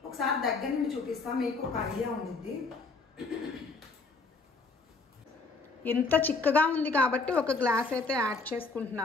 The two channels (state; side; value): quieter; right; 4.1 dB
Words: ఒకసారి దగ్గర నుండి చూపిస్తాను, మీకు ఒక ఐడియా ఉండిద్ది. ఇంత చిక్కగా ఉంది కాబట్టి ఒక గ్లాస్ అయితే యాడ్